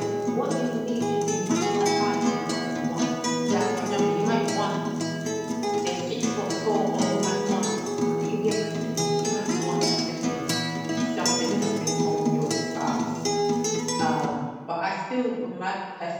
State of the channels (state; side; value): identical; both; correlation 1.00